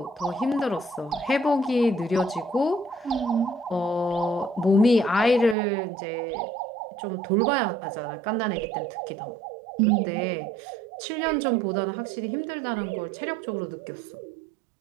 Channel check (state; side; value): drops out; left; at 5.6 s